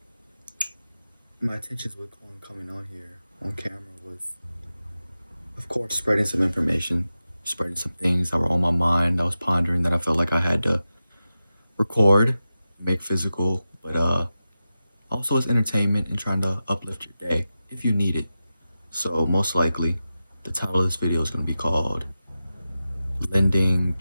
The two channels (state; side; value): inverted; both; correlation -0.93